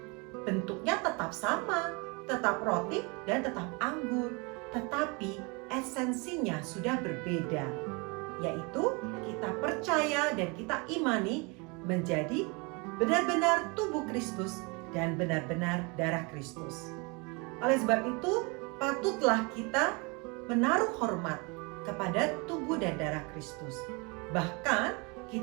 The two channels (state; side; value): quieter; left; 29.5 dB